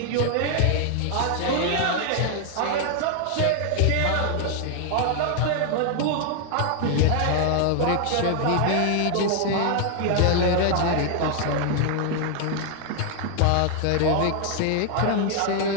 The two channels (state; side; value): different; both; correlation 0.00